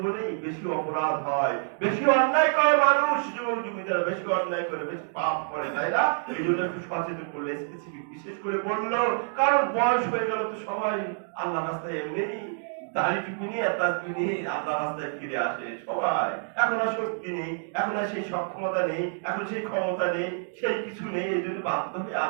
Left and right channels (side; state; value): left; silent; digital silence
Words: বেশি অপরাধ হয়, বেশি অন্যায় করে মানুষ, যুবক যুবতীরা বেশি অন্যায় করে, বেশি পাপ করে, তাই না? এই জন্য একটু সচেতন করলে স্পেসিফিক বিশেষ করে বললো, কারণ বয়স হয়ে গেল তো সবাই আল্লাহ রাস্তায় এমনি দাড়িটুকু নিয়ে তাজবি নিয়ে আল্লাহ রাস্তায় ফিরে আসে সবাই। এখন আর শক্তি নেই, এখন আর সেই সক্ষমতা নেই, এখন সেই ক্ষমতা নেই, সেই কিছু নেই, এই জন্য বাধ্য হয়ে